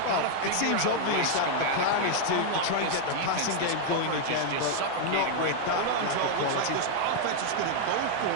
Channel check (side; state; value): both; different; correlation 0.00